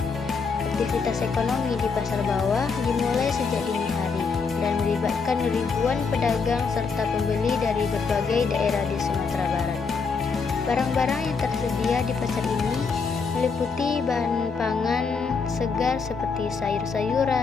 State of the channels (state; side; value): quieter; right; 5.1 dB